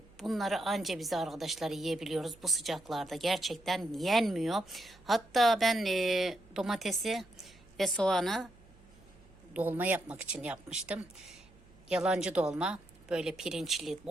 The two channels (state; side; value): noise; right; hum, 26 dB below the sound